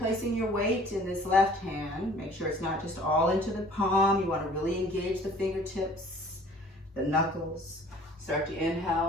your weight in this left hand. Make sure it's not just all into the palm. You want to really engage the fingertips, the knuckles. Start to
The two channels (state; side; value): normal; both; correlation 0.51